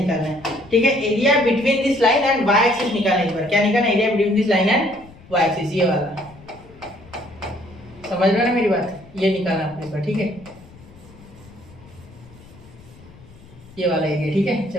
है, ठीक है, area between this line and y axis निकालना है। इस बार क्या निकालना है, area between this line and y axis, ये वाला, समझ रहे हो ना मेरी बात, ये निकालना आपको इस बार, ठीक है, ये वाला एरिया, ठीक है।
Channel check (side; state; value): left; noise; rumble, 22 dB below the sound